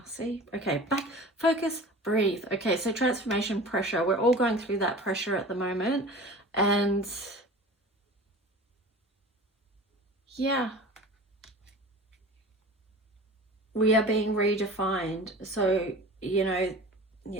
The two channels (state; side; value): normal; both; correlation 0.38